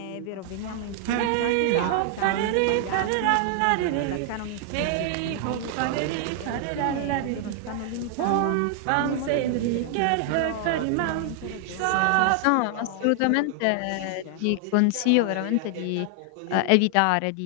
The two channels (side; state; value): both; different; correlation 0.00